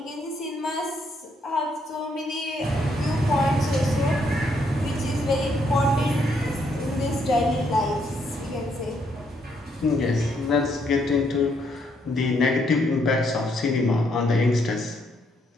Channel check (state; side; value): normal; both; correlation 0.73